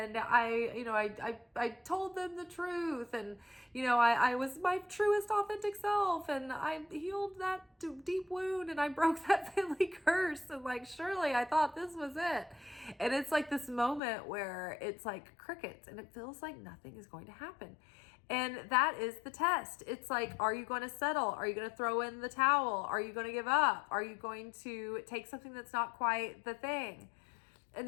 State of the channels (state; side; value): drops out; right; at 14.0 s